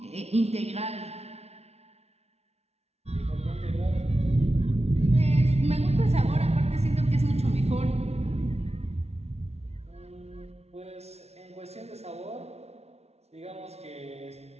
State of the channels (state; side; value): late; left; 0.31 ms